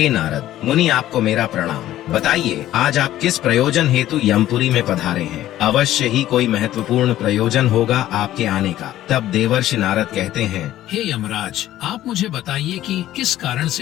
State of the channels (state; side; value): quieter; right; 13.6 dB